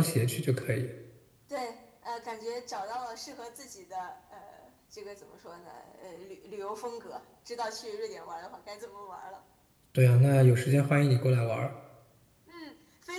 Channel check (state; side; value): identical; both; correlation 1.00